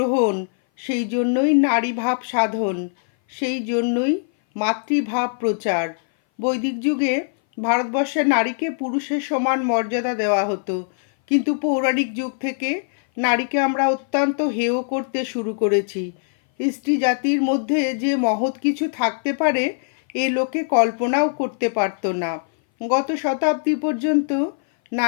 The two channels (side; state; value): right; silent; 59 dB below the other